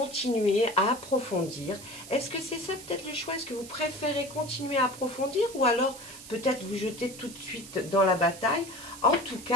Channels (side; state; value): right; noise; hiss, 15 dB below the sound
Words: à approfondir. Est-ce que c'est ça peut-être le choix? Est-ce que vous préférez continuer à approfondir ou alors peut-être vous jeter tout de suite dans la bataille? En tout